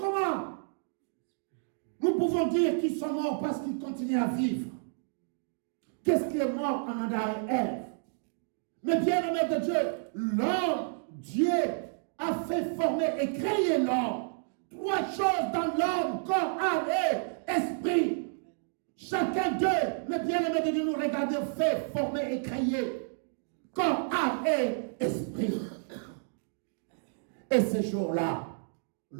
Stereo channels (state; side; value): silent; left; digital silence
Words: nous pouvons dire qu'ils sont morts? Parce qu'ils continuent à vivre. Qu'est-ce qui est mort en Adam et Ève? Mais bien aimé de Dieu, l'homme, Dieu a fait former et créer l'homme. Trois choses dans l'homme: corps, âme et esprit. Chacun d'eux, mais bien aimé de Dieu, nous regardons, fait former et créer corps, âme et esprit. Et ce jour-là,